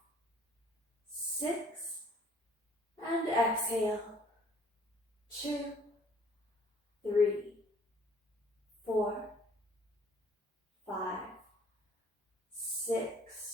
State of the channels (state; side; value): normal; both; correlation 0.58